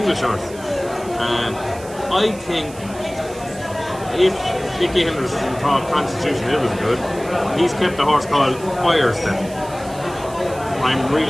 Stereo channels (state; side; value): noise; right; hiss, 19 dB below the sound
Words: horse. And I think if Nicky Henderson thought Constitution Hill was good, he's kept a horse called Firestep. I'm